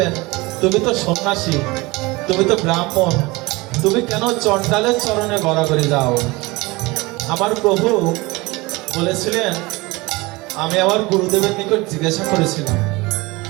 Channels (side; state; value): left; quieter; 23.0 dB